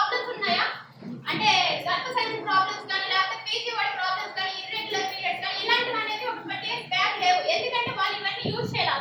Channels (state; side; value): identical; both; correlation 1.00